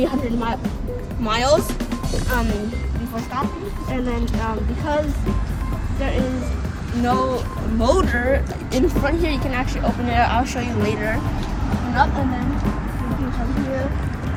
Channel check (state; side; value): identical; both; correlation 1.00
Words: miles before stopping. And then because there is no motor in front here, you can actually open it. I'll show you later. Open up, and then you can come here.